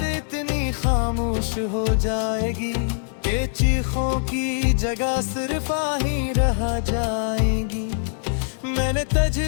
इतनी खामोश हो जाएगी, के चीखों की जगह सिर्फ आही रह जाएगी। मैंने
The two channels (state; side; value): silent; right; digital silence